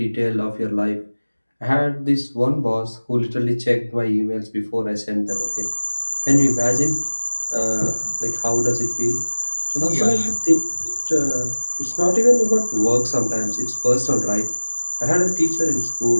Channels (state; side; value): inverted; both; correlation -1.00